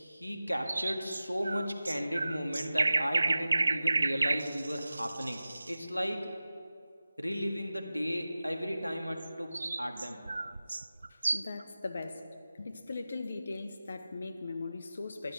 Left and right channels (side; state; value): both; inverted; correlation -0.95